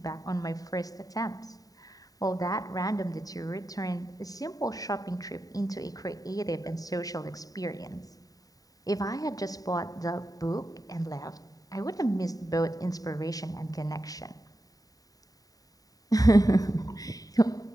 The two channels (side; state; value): right; late; 0.18 ms